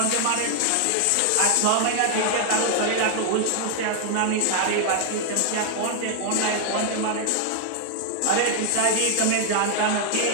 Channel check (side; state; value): both; different; correlation 0.00